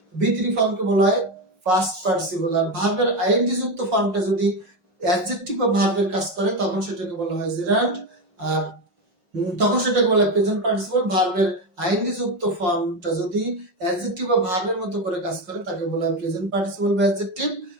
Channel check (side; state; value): left; late; 5.5 ms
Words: V3 ফর্মকে বলা হয় পাস্ট পার্টিসিপল। আর ভার্বের আইএনজি যুক্ত ফর্মটা যদি অ্যাডজেক্টিভ বা ভার্বের কাজ করে তখন সেটাকে বলা হয় জেরান্ড, আর তখন সেটাকে বলা হয় প্রেজেন্ট পার্টিসিপল। ভার্বের আইএনজি যুক্ত ফর্মটা যদি অ্যাডজেক্টিভ বা ভার্বের মতো করে কাজ করে তাকে বলা হয় প্রেজেন্ট পার্টিসিপল বা অ্যাডজেক্টিভ,